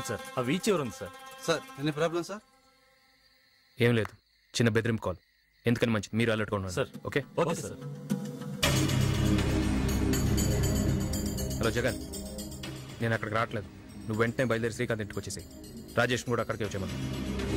సార్. ఆ వీచ్ ఎవరు ఉంది sir? Sir any problem sir? ఏం లేదు, చిన్న బెదిరింపు కాల్. ఎందుకని మంచిది, మీరు అలర్ట్గా ఉండండి sir. Okay? Okay sir. Hello Jagan, నేను అక్కడికి రావట్లేదు. నువ్వు వెంటనే బయలుదేరి శ్రీకాంత్ ఇంటికి వచ్చేసి రాజేష్ కూడా అక్కడికి వచ్చేమను.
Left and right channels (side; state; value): both; identical; correlation 1.00